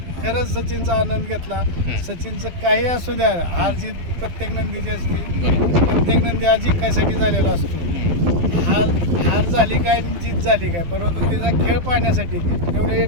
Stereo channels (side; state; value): left; late; 12 ms